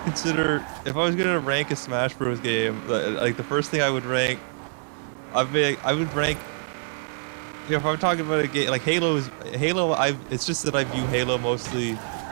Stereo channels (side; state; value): left; silent; digital silence